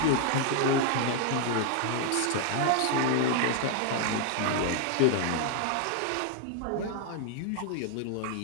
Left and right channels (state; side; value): different; both; correlation 0.00